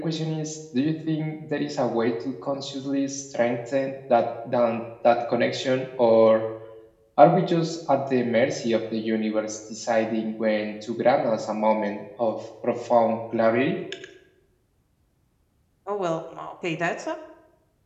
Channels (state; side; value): identical; both; correlation 1.00